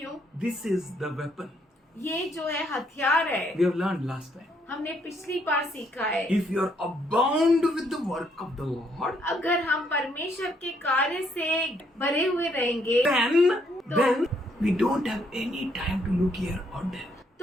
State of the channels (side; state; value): both; normal; correlation 0.71